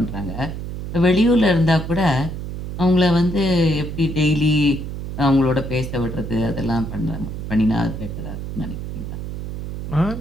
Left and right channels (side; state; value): right; noise; hum, 7 dB below the sound